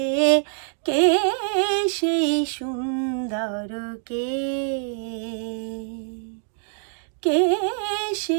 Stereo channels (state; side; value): silent; left; digital silence